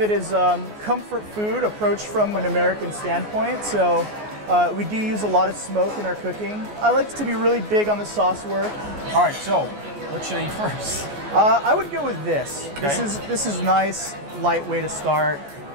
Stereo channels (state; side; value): late; left; 14 ms